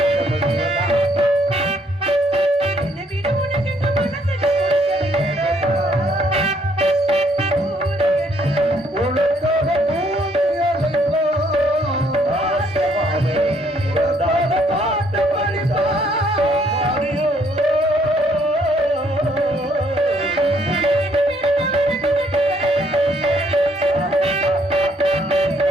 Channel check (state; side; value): normal; both; correlation 0.68